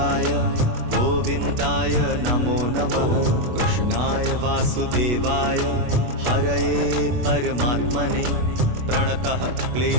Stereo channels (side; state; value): left; late; 24 ms